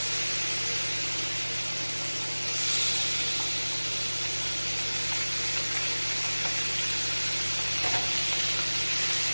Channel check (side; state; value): both; inverted; correlation -1.00